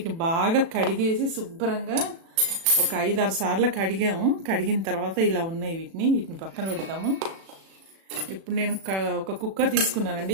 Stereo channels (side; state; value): left; late; 36 ms